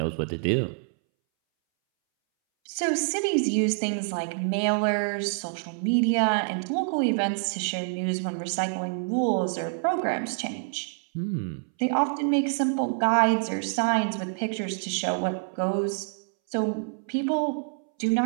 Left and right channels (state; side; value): silent; left; 60 dB below the other